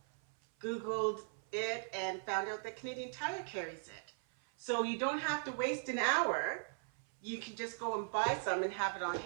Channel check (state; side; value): silent; left; 52 dB below the other